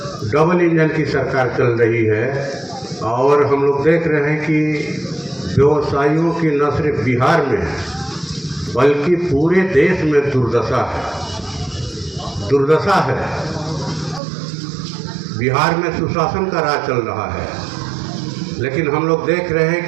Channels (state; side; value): drops out; left; at 14.2 s